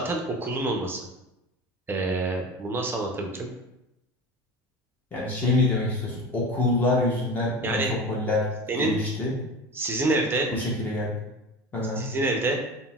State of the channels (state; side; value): normal; both; correlation 0.31